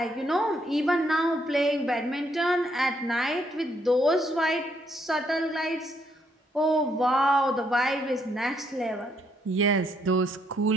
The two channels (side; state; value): both; normal; correlation 0.72